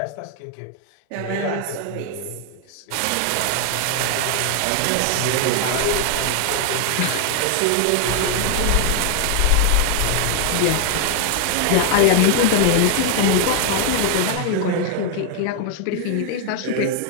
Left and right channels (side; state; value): both; different; correlation 0.00